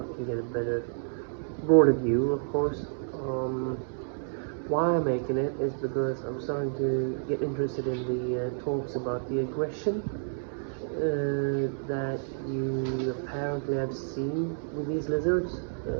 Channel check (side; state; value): left; silent; digital silence